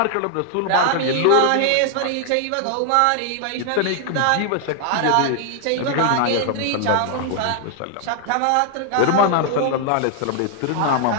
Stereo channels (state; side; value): different; both; correlation 0.00